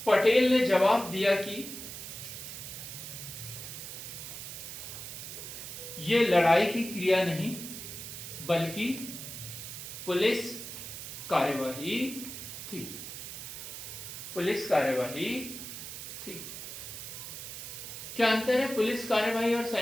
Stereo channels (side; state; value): right; noise; hiss, 9 dB below the sound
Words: पटेल ने जवाब दिया कि ये लड़ाई की क्रिया नहीं बल्कि पुलिस कार्यवाही थी। पुलिस कार्यवाही थी। क्या अंतर है पुलिस कार्यवाही और